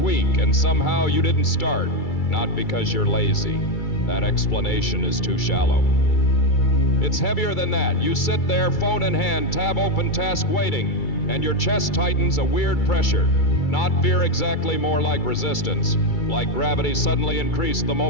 and somehow you didn't start. Not because you're lazy. That explanation is too shallow. It's heavier than that. You sit there, phone in hand, tab open, task waiting, and your chest tightens a weird pressure. Not fear exactly, more like resistance. Like gravity suddenly increased the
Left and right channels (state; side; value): late; right; 2.3 ms